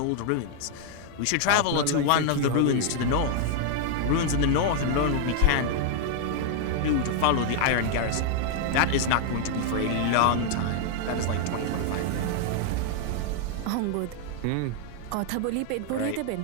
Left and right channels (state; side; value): different; both; correlation 0.00